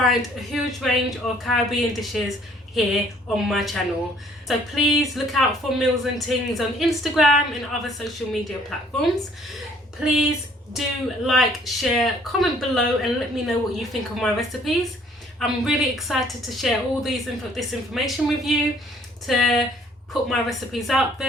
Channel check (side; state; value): both; normal; correlation 0.60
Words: a huge range of Caribbean dishes here on my channel. So please look out for Milz and Tingz on Instagram and other social media platforms. Please do like, share, comment below and let me know what you think of my recipes. I'm really excited to share all this information with you, to put my recipes out